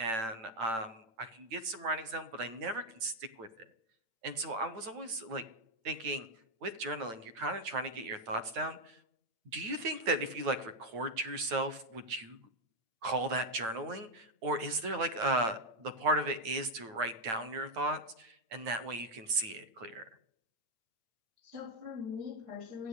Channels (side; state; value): left; late; 8.9 ms